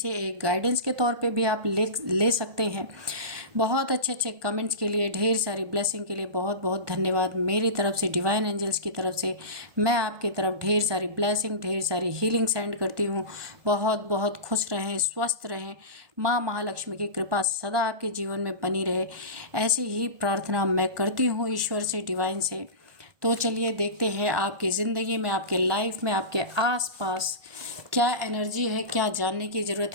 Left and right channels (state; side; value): late; left; 1.5 ms